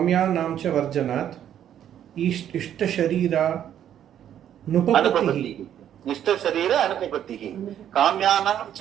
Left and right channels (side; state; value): left; quieter; 10.2 dB